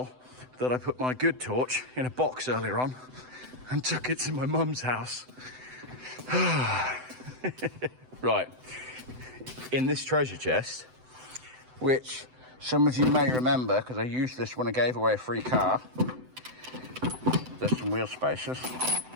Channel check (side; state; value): left; late; 7.9 ms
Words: that I put my good torch in a box earlier on and took it to my mum's house. Right, in this treasure chest, which some of you may remember because I used this when I gave away a free car, There's some wheel spacers